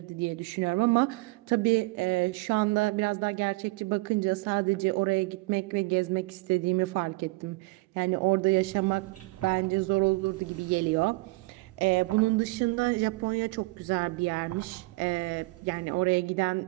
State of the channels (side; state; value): left; quieter; 24.5 dB